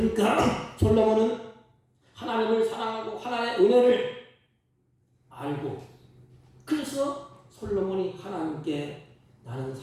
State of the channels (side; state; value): both; identical; correlation 1.00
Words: 솔로몬은 하나님을 사랑하고 하나님의 은혜를 알고 그래서 솔로몬이 하나님께 나는